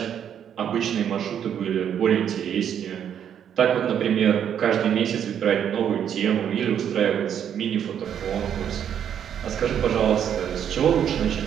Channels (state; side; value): quieter; left; 9.0 dB